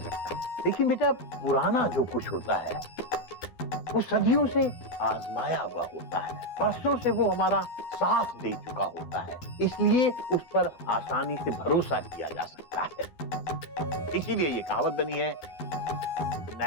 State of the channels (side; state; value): right; late; 12 ms